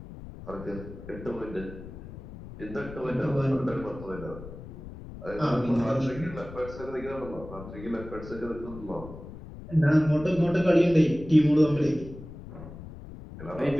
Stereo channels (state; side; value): noise; left; rumble, 14 dB below the sound